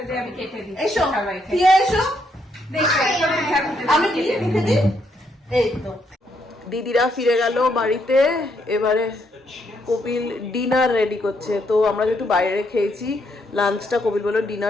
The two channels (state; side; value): normal; both; correlation 0.75